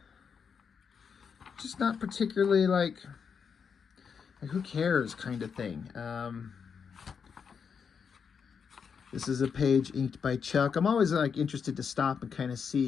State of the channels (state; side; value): quieter; right; 6.4 dB